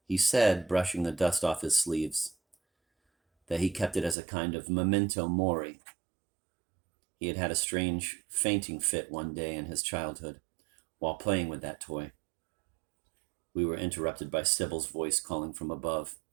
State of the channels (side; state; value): left; drops out; at 4.2 s